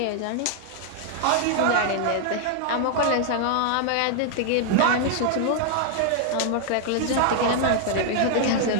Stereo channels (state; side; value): different; both; correlation -0.01